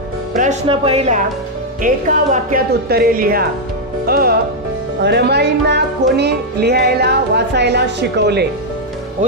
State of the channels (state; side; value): normal; both; correlation -0.02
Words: प्रश्न पहिला, एका वाक्यात उत्तरे लिहा। रमाईंना कोणी लिहायला वाचायला शिकवले?